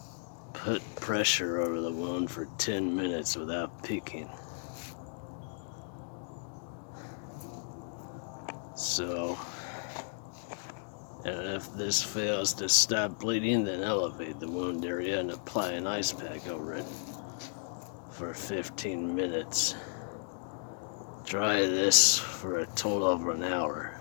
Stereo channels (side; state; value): right; silent; digital silence